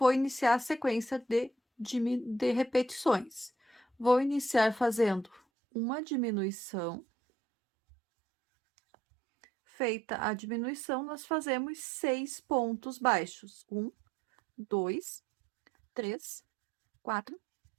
iniciar a sequência de repetições. Vou iniciar fazendo uma diminuição. Feita a diminuição, nós fazemos 6 pontos baixos. 1, 2, 3, 4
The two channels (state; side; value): drops out; left; at 5.4 s